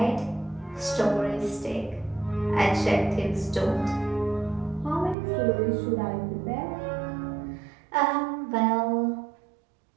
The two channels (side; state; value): left; drops out; at 5.2 s